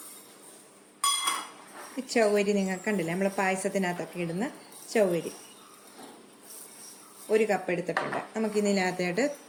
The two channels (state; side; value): identical; both; correlation 1.00